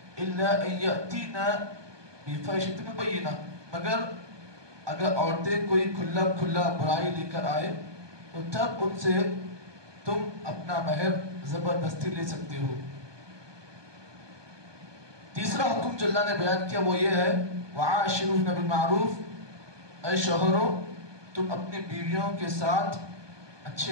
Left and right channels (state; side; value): late; left; 1.2 ms